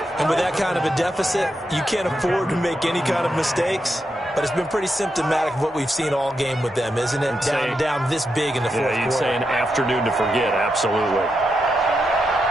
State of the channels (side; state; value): both; normal; correlation 0.85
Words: And with that kind of a deficit, you can't afford to make any kind of mistakes. But it's been pretty symptomatic of what we've seen all game with them, isn't it? Down this big in the fourth quarter. You'd say an afternoon to forget, absolutely.